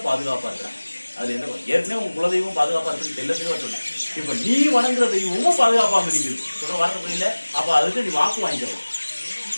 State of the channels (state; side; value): inverted; both; correlation -1.00